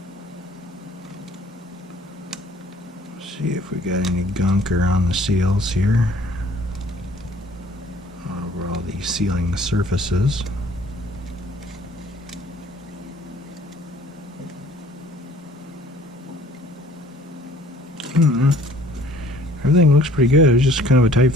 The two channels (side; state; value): both; normal; correlation 0.55